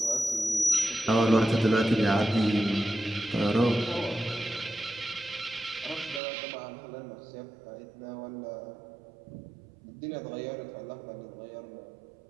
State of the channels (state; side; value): drops out; left; at 6.2 s